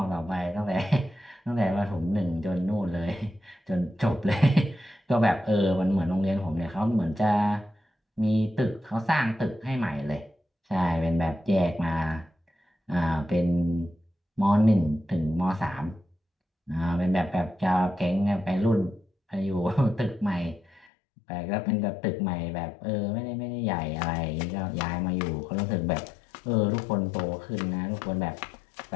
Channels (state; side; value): drops out; right; at 20.9 s